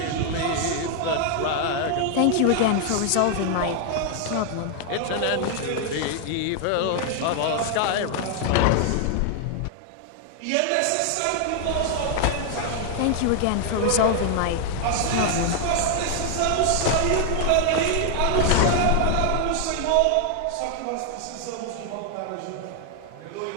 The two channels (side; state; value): both; different; correlation 0.00